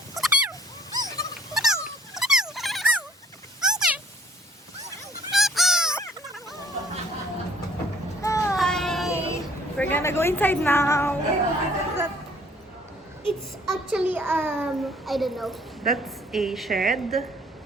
Hi! We're gonna go inside now. It's actually, I don't know. That's a shed.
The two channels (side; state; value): both; normal; correlation 0.58